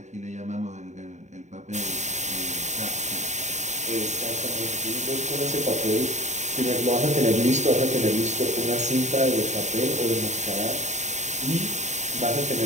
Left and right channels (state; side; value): late; left; 0.34 ms